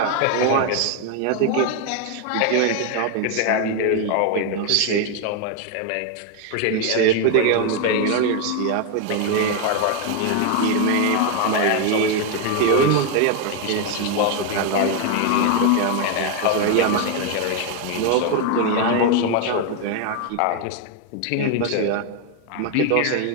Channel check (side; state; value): both; different; correlation 0.01